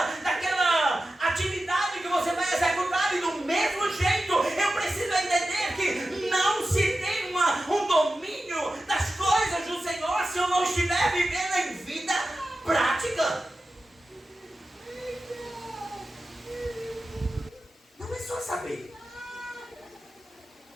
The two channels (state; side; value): normal; both; correlation 0.93